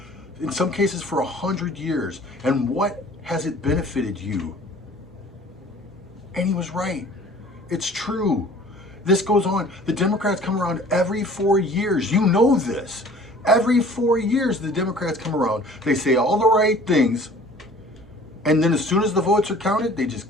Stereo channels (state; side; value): normal; both; correlation 0.49